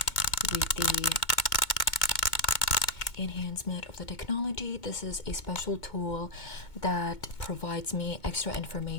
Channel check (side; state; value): right; late; 2.2 ms